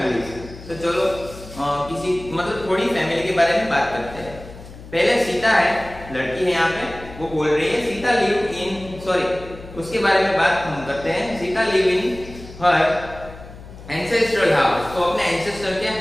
तो चलो किसी मतलब थोड़ी फैमिली के बारे में बात करते हैं। पहले सीता है, लड़की है यहाँ पे, वो बोल रही है सीता लिव इन, सॉरी उसके बारे में बात हम करते हैं। Sita live in her ancestral house. तो अपने एंसेस्टर के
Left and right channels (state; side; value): noise; left; hum, 16 dB below the sound